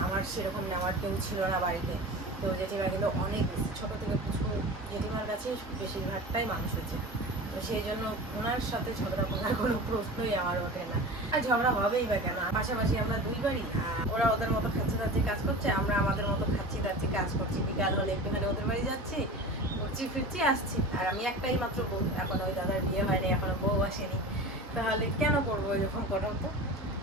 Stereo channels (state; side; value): normal; both; correlation 0.34